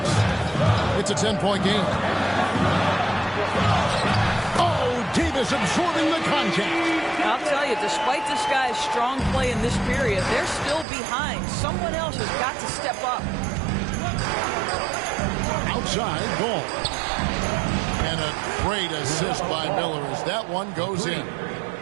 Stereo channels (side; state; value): left; drops out; at 10.9 s